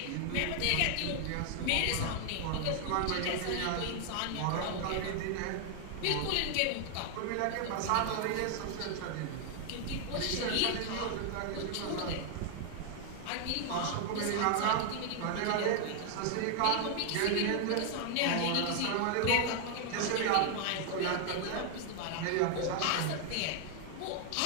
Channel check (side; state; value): both; different; correlation 0.00